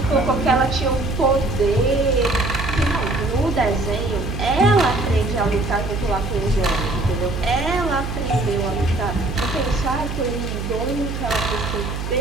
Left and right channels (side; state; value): right; noise; hum, 5 dB below the sound